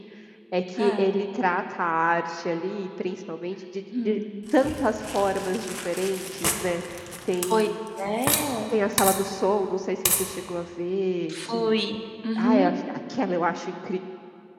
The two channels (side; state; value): both; identical; correlation 1.00